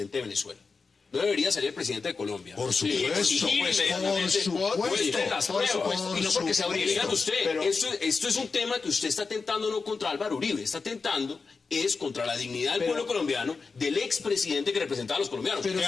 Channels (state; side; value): quieter; right; 4.6 dB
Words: de Venezuela. No debería salir el presidente de Colombia. Por supuesto, y no porque sea Uribe. Digan usted, esto es un tema que usted está tentando no contra Álvaro Uribe, está tentando es contra la dignidad del pueblo colombiano, del expresidente que representaba a los colombianos. Pero que